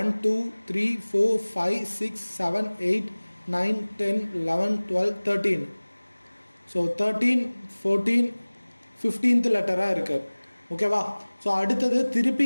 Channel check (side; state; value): both; inverted; correlation -1.00